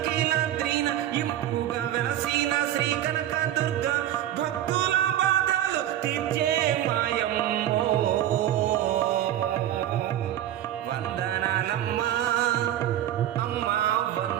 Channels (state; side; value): quieter; left; 12.2 dB